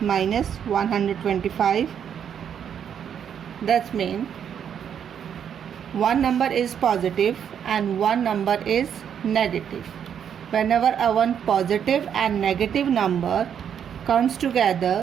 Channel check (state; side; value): quieter; left; 8.4 dB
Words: minus 125. That's mean one number is positive and one number is negative. Whenever a one positive and negative number comes